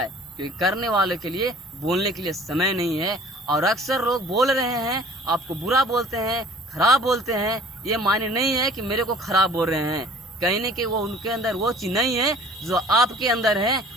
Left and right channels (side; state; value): both; normal; correlation 0.50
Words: क्योंकि करने वाले के लिए बोलने के लिए समय नहीं है। और अक्सर लोग बोल रहे हैं, आपको बुरा बोलते हैं, खराब बोलते हैं, ये मायने नहीं है कि मेरे को खराब बोल रहे हैं। कहीं न कहीं वो उनके अंदर वो चीज नहीं है जो आपके अंदर है,